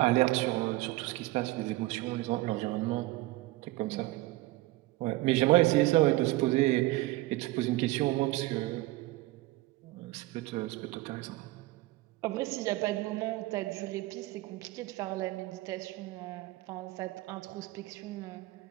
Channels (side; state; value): left; quieter; 19.0 dB